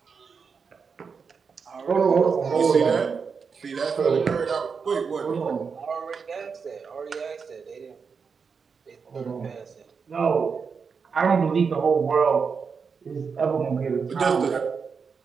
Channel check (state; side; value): quieter; left; 5.6 dB